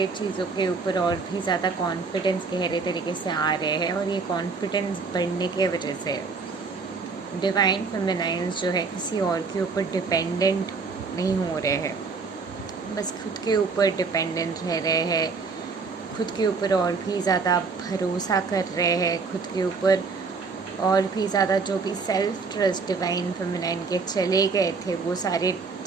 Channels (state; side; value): quieter; left; 4.6 dB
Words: चीज़ों के ऊपर और भी ज़्यादा कॉन्फिडेंस गहरे तरीके से आ रहे हैं। और ये कॉन्फिडेंस बढ़ने के वजह से डिवाइन फेमिनाइंस जो है किसी और के ऊपर डिपेंडेंट नहीं हो रहे हैं, बस खुद के ऊपर डिपेंडेंट रह रहे हैं, खुद के ऊपर और भी ज़्यादा भरोसा कर रहे हैं, खुद के ऊपर और भी ज़्यादा जो भी सेल्फ ट्रस्ट डिवाइन फेमिनाइन के चले गए थे, वो सारे